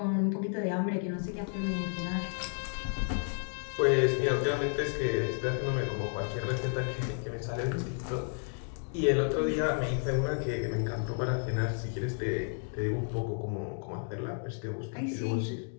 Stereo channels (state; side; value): silent; right; 56 dB below the other